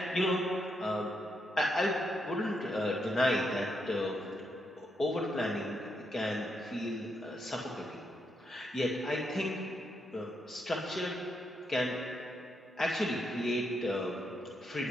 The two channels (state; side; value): normal; both; correlation 0.80